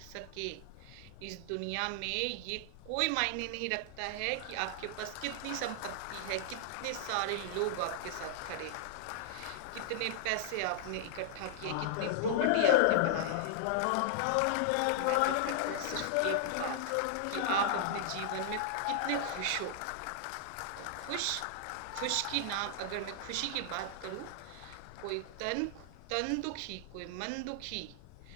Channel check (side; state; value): both; different; correlation -0.01